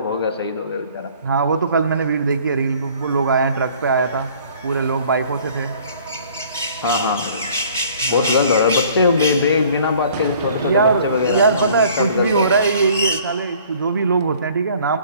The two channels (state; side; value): inverted; both; correlation -0.54